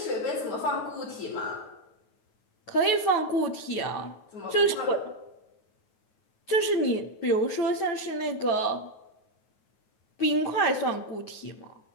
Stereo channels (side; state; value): right; late; 9.3 ms